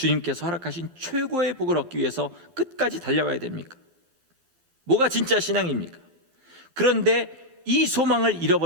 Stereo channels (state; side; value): late; left; 11 ms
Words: 허락하신 최고의 복을 얻기 위해서 끝까지 달려가야 됩니까? 뭐가 진짜 신앙입니까? 그런데 이 소망을